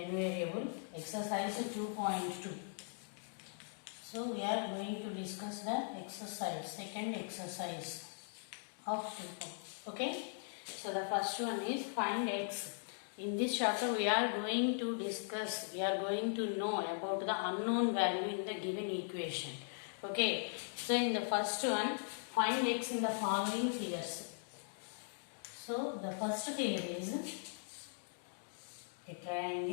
variable, exercise 2.2. So we are going to discuss the exercise, second exercise of 2. Okay. So the first one is find x. In this chapter we are going to discuss, we are going to know about the unknown value in the given equation. Okay. So in the first one, find x in the following figures. So the first figure is a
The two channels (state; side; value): silent; right; digital silence